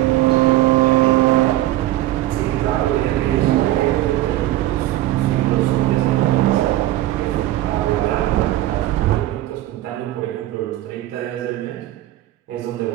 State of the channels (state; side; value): quieter; left; 15.1 dB